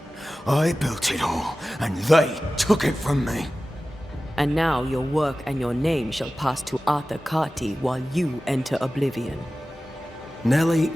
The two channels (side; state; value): both; normal; correlation 0.96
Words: I built it all, and they took it from me. And now your work and your name shall pass to Arthur Carty while you enter oblivion. Nellie